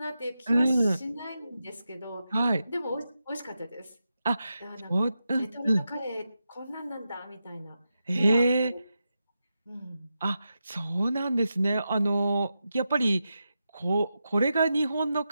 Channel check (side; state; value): both; inverted; correlation -0.89